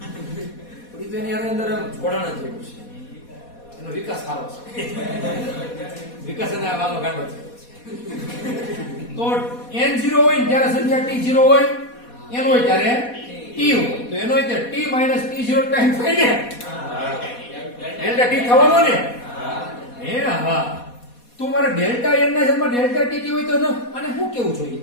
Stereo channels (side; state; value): right; late; 4.2 ms